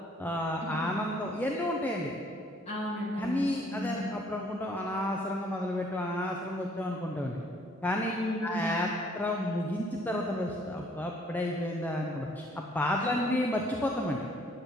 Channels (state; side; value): normal; both; correlation 0.62